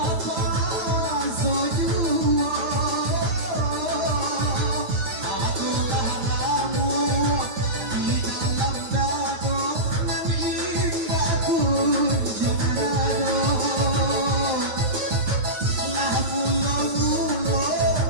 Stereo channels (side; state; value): left; late; 9.4 ms